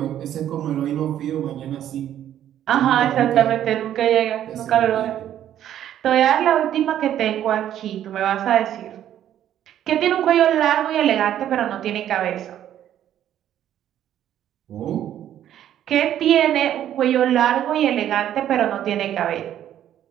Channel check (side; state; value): left; quieter; 11.1 dB